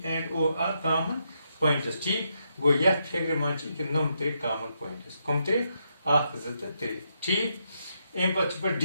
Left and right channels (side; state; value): both; inverted; correlation -0.79